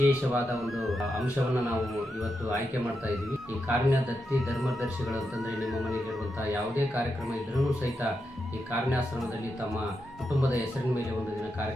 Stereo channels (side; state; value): both; normal; correlation 0.86